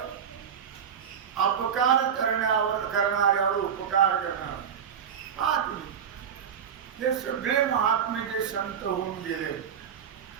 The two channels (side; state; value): left; quieter; 7.9 dB